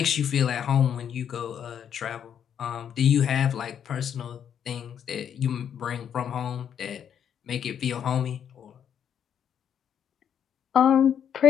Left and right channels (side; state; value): right; quieter; 8.7 dB